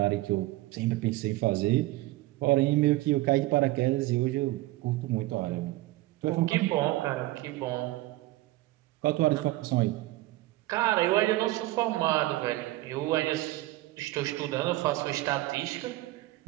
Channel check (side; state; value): left; quieter; 18.2 dB